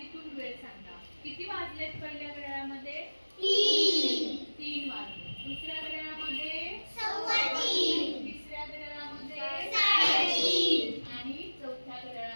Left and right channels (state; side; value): inverted; both; correlation -1.00